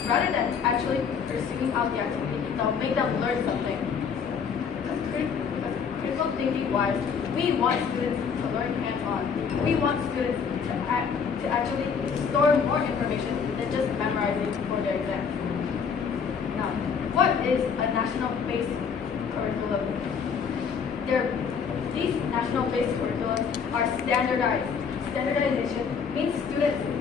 rather than actually pursuing out the activity that will make them learn something. Because critical thinking wise, we want students to learn hands-on. We want students to actually store more information than just memorizing for their exams. Now, what is a national-based curriculum? These national-based curriculums are standardized. Standardization means students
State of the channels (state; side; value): quieter; right; 6.4 dB